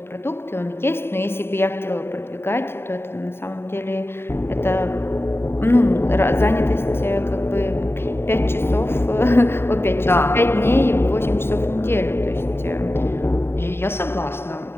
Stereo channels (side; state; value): right; late; 0.11 ms